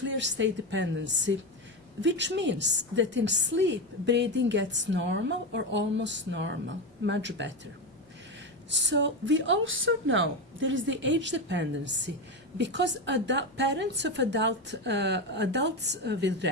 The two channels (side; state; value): both; normal; correlation 0.14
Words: state dependency, which means that in sleep, breathing gets normal or almost normal, much better. So we also know there is the age dependency because parents of adults with